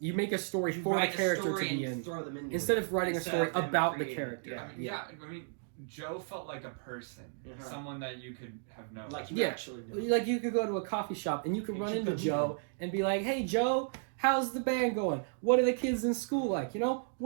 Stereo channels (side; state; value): left; silent; digital silence